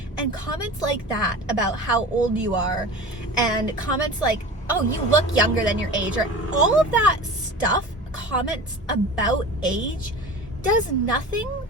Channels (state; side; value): normal; both; correlation 0.35